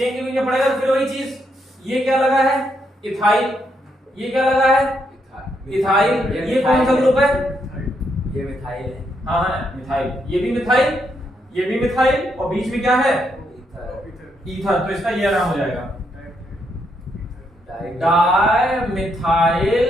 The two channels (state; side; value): normal; both; correlation 0.78